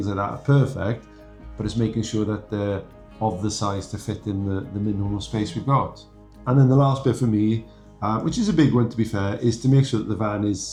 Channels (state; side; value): identical; both; correlation 1.00